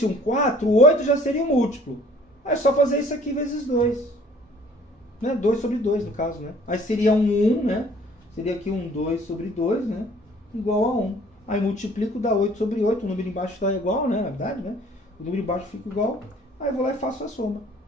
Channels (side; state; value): both; normal; correlation 0.54